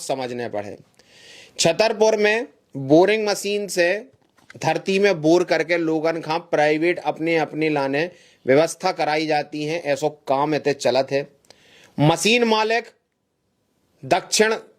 पड़े। छतरपुर में बोरिंग मशीन से धरती में बोर करके लोगन का प्राइवेट अपने अपने लाने व्यवस्था कराई जाती है। ऐसो काम इतने चलत है। मशीन मालिक दक्षिण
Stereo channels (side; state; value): both; identical; correlation 1.00